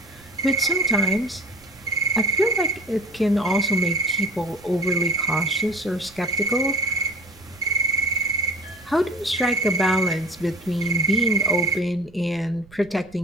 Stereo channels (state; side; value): noise; right; rumble, 24 dB below the sound